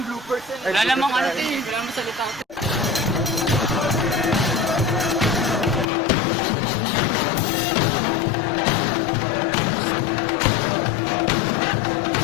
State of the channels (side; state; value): right; drops out; at 5.9 s